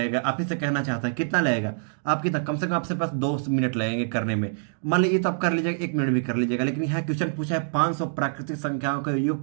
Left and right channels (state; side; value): silent; left; digital silence